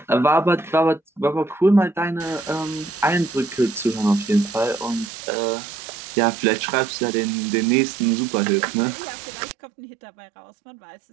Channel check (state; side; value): drops out; left; at 5.1 s